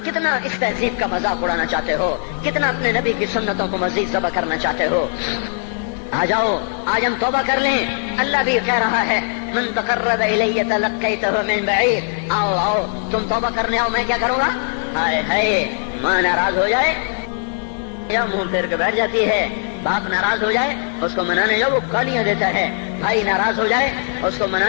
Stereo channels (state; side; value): silent; right; 64 dB below the other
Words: اس تہذیب کا مذاق اڑانا چاہتے ہو، کتنا اپنے نبی کی سنتوں کو مزید ذبح کرنا چاہتے ہو. آ جاؤ آج ہم توبہ کر لیں. اللہ بھی کہہ رہا ہے من تقرب الی تلقیتہ من بعید. آؤ تم توبہ کرنے آؤ، میں کیا کروں گا. ہائے ماں ناراض ہو جائے یا منہ پھیر کے بیٹھ جاتی ہے، باپ ناراض ہو جائے اس کو منانے جاؤ وہ گالیاں دیتا ہے، بھائی ناراض ہو جائے اس کو